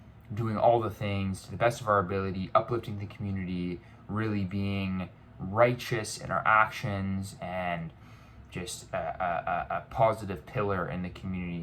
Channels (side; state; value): both; identical; correlation 1.00